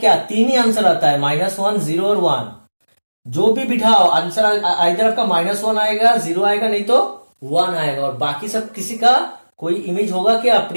3 ही आंसर आता है, -1 0 और 1, जो भी बिठाओ आंसर इधर आपका -1 आएगा, 0 आएगा, नहीं तो 1 आएगा, और बाकी सब किसी का कोई इमेज होगा क्या,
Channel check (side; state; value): both; inverted; correlation -1.00